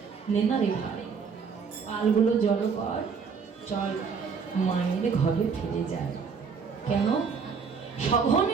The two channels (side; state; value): left; quieter; 5.8 dB